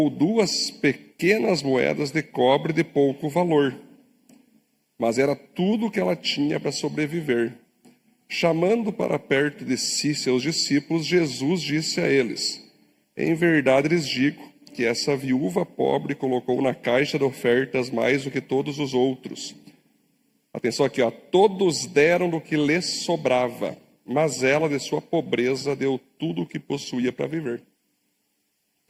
2 pequenas moedas de cobre de pouco valor. Mas era tudo o que ela tinha para sobreviver. Chamando para perto de si seus discípulos, Jesus disse a eles: em verdade lhes digo que essa viúva pobre colocou na caixa de ofertas mais do que todos os outros. Atenção aqui, ó. Todos deram do que lhes sobrava, mas ela, de sua pobreza, deu tudo o que possuía para viver.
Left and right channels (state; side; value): identical; both; correlation 1.00